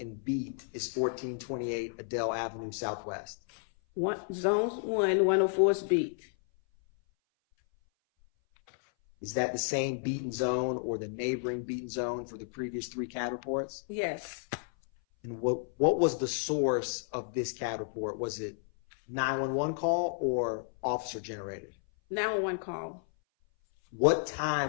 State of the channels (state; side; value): silent; right; 56 dB below the other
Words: beat is 1428 Adele Avenue Southwest? Zones 104 is beat. Is that the same beaten zone or the neighboring beaten zone for the previous 3 CAD reports? Yes. And what was the source of this CAD report? Was it 911 call or officer generated? 911 call. What